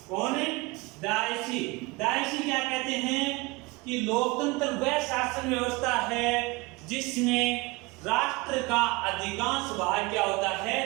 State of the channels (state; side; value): quieter; left; 24.6 dB